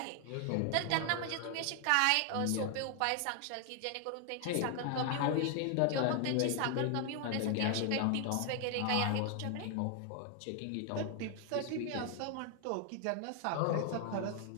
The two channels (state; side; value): different; both; correlation 0.00